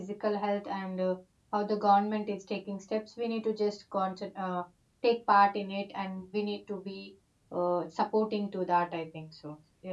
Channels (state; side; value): identical; both; correlation 1.00